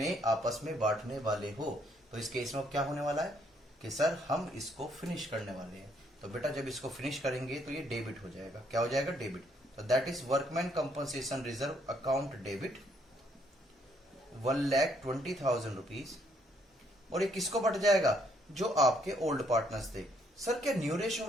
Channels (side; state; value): both; normal; correlation 0.69